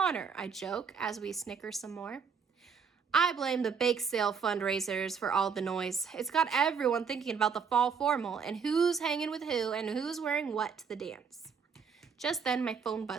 I joke as we snicker some more. I blame the bake sale fundraisers for all the noise. It's got everyone thinking about the fall formal and who's hanging with who and who's wearing what to the dance. Just then my phone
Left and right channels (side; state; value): left; quieter; 6.2 dB